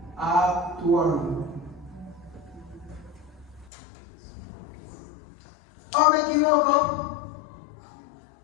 actuando. ¿O me equivoco?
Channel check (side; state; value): right; drops out; at 3.7 s